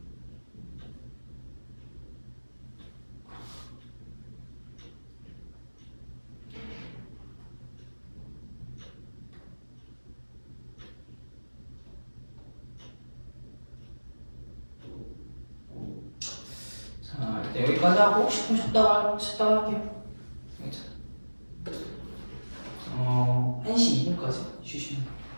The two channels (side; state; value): both; inverted; correlation -1.00